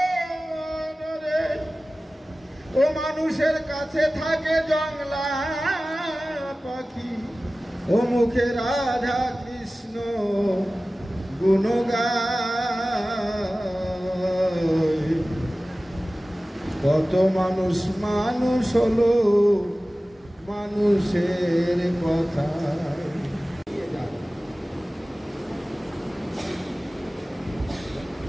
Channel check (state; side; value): normal; both; correlation 0.97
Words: ও মানুষের কাছে থাকে জংলা পাখি ও মুখে রাধা কৃষ্ণ গুণগায় কত মানুষ মানুষ হলো মানুষের কথা